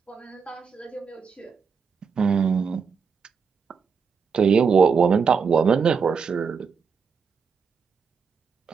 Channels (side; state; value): left; quieter; 5.8 dB